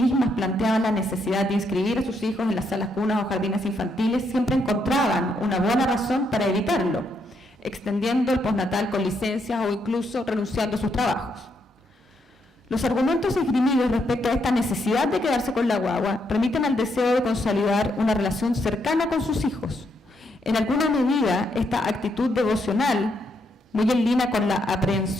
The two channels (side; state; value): both; normal; correlation 0.77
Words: planteaban la necesidad de inscribir a sus hijos en las salas cunas o jardines infantiles, siempre encontraban una buena razón para evitarlo, extendiendo el postnatal con licencias o incluso renunciando a sus trabajos. Los argumentos esgrimidos respecto a esta necesidad de quedarse con la guagua remiten al deseo de consolidar una relación cercana con sus hijos. En alguna medida, esta actitud devocional, muy en línea con la